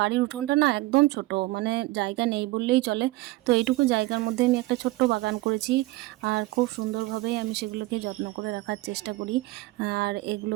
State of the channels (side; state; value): left; quieter; 20.0 dB